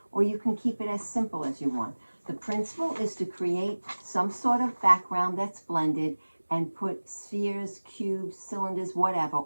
or you can keep it as simple as you want. The principle is to create some sort of background that's blended and put spheres, cubes, cylinders, whatever,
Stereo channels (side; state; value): both; inverted; correlation -1.00